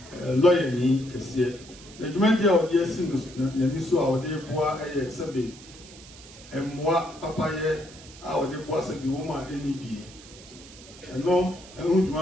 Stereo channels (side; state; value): right; noise; hiss, 19 dB below the sound